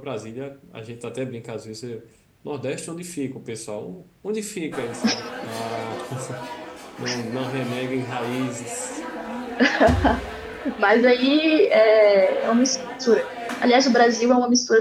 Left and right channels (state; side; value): identical; both; correlation 1.00